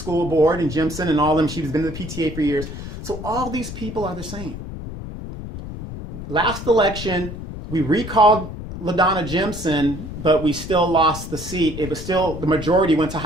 board, and Jimson and all of them, she's been in the PTA for years. So all these people are the same. Last election, we recalled LaDonna Jimson, but we still lost the seat. It was still, the majority went to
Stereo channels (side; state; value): left; noise; rumble, 9 dB below the sound